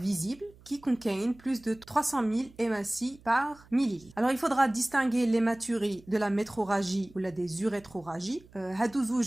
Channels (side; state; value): right; noise; hum, 25 dB below the sound